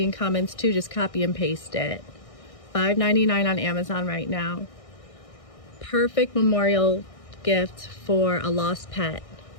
in comments too. Just copy and paste it. $5.99 on Amazon right now. Perfect memorial gift for a lost pet.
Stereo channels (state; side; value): late; right; 1.6 ms